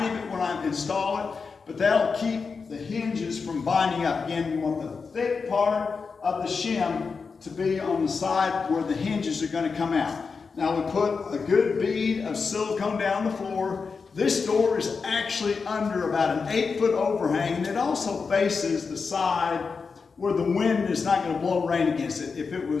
bit when I install it, but that'll keep the hinges from binding up. Again, you want the thick part of the shim to be on the side where the hinges are going to come out. Now, we put a good bead of silicone down the floor. This door is actually under about an 8-foot overhang, and it also faces the side where the wind is not going to blow rain against it. If it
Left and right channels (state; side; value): quieter; right; 5.0 dB